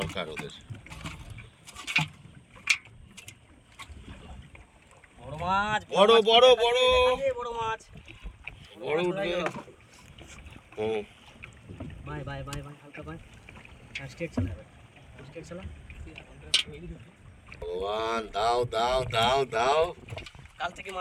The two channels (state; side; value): identical; both; correlation 1.00